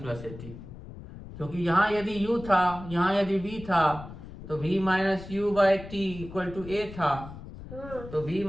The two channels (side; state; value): left; noise; rumble, 14 dB below the sound